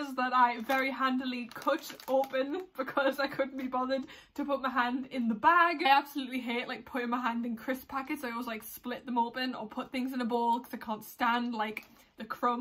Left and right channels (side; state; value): both; identical; correlation 1.00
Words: that I very handily cut open because I couldn't be bothered to put my hand in the bag. I absolutely hate like putting my hand in crisp packets. I always like split them open or put things in a bowl because I can't stand like the